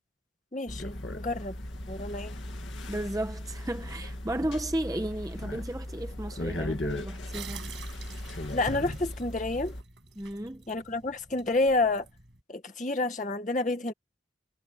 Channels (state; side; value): normal; both; correlation 0.49